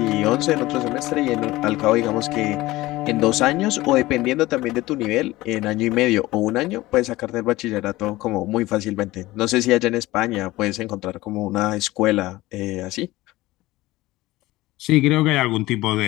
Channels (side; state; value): right; quieter; 18.4 dB